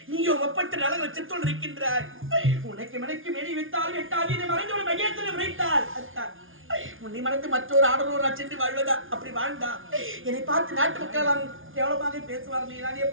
நீயும் ஒப்பற்ற நலன் வச்சுத்தோடு இருக்கின்றாய். உனக்கு மனைக்கு மேடி வைத்தால் எட்டாது இதை மறைந்து ஒரு மையத்தில் விளைத்தால் உன்னை மறைந்து மற்றொரு ஆடலூர் சென்று வாழ்வதா? அப்படி வாழ்ந்தா என்னை பார்த்து நாட்டு மக்கள் கேவலமாக பேசுவார்கள். நான்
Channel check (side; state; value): left; late; 0.58 ms